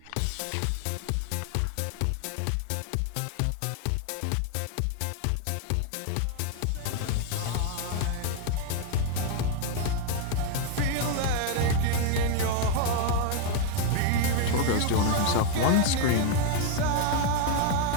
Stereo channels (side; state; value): both; different; correlation 0.01